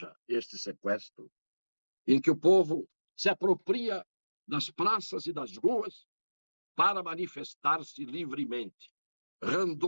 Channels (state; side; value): inverted; both; correlation -1.00